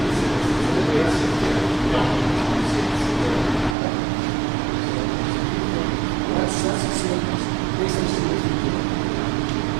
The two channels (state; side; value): drops out; left; at 3.8 s